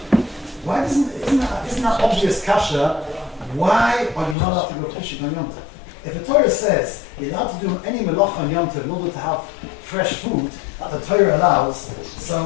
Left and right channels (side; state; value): right; drops out; at 4.4 s